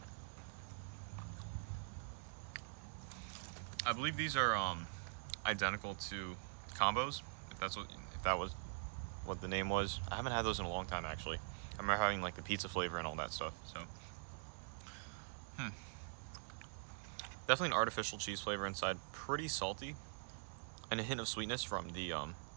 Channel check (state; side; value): silent; left; digital silence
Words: I believe these are identical to combos, if that was what the name was. I haven't had those in a long time actually. I remember having like the pizza flavor and all that stuff. So definitely an artificial cheese flavor inside, pretty salty, and a hint of sweetness from the